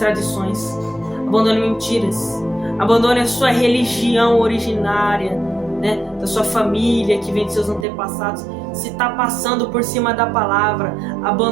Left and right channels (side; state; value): left; drops out; at 7.9 s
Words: abandone mentiras, abandone a sua religião originária, da sua família que vem de seus antepassados. Se está passando por cima da palavra,